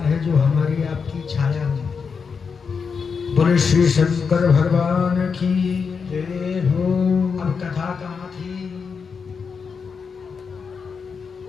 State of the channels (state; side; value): quieter; right; 5.7 dB